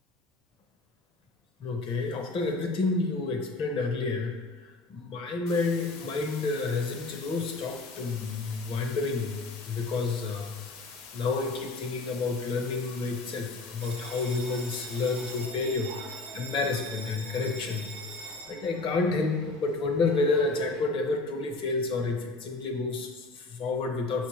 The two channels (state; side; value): quieter; right; 3.3 dB